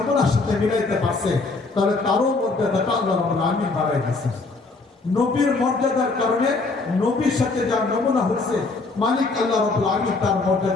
সাথে মিলাইতে পারছে তাহলে তারও মর্যাদাটা আল্লাহ রাব্বুল আলামিন বাড়াই দিয়েছে। নবীর মর্যাদার কারণে নবীর সাথে যা নমুনা হচ্ছে মালিক আল্লাহ রাব্বুল আলামিন তার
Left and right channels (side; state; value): right; quieter; 3.7 dB